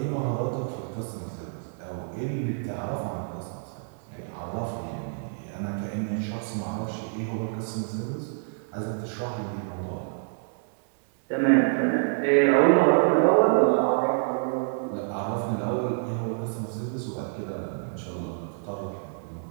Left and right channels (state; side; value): silent; left; digital silence